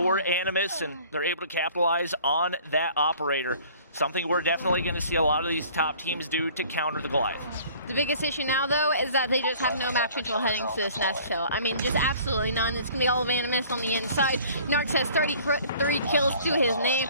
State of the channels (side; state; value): both; inverted; correlation -0.51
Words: Animus, and they're able to capitalize on that operator. Something we're definitely going to see a lot of these top teams do to counter the Goliath. The biggest issue now, though, is that they just have no map control heading to this nest hill. I mean, just absolutely none. It's going to be all of Animus on the inside. Narcs has 33 kills to his name.